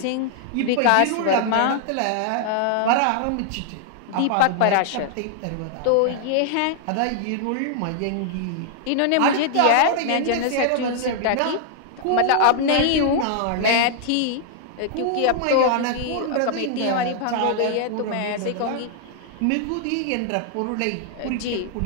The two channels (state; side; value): different; both; correlation 0.00